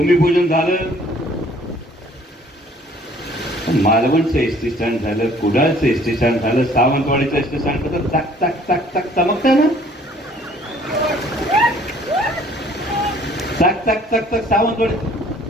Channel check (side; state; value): both; normal; correlation 0.56